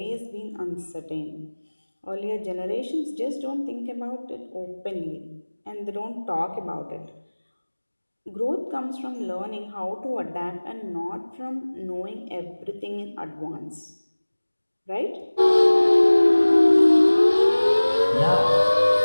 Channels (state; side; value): inverted; both; correlation -1.00